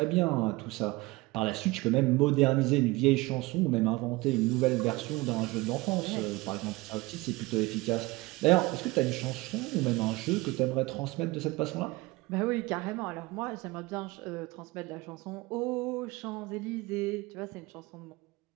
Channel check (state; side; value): quieter; left; 21.9 dB